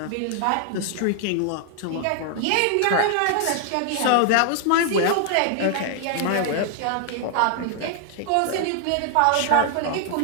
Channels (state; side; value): different; both; correlation 0.00